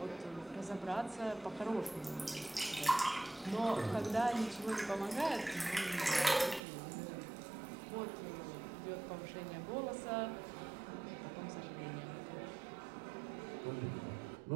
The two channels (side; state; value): left; drops out; at 6.6 s